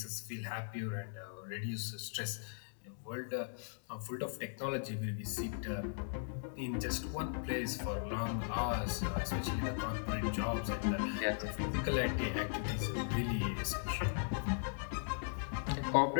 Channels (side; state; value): right; silent; digital silence